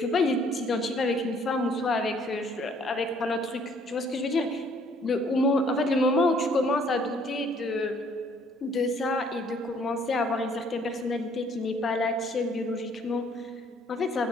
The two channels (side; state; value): both; normal; correlation 0.62